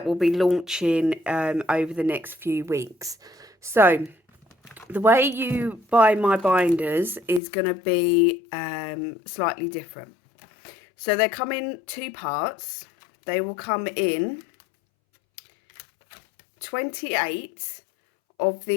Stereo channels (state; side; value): drops out; right; at 7.4 s